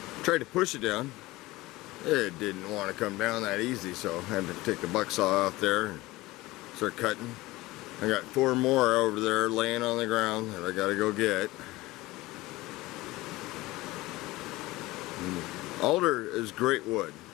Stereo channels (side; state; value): right; quieter; 19.5 dB